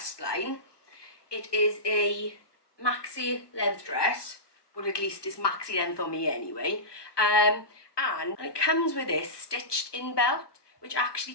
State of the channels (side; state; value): right; late; 1.2 ms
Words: line. It is a maxi length dress, well at least it's maxi length on me anyway, and it comes with this stitched in belt, which actually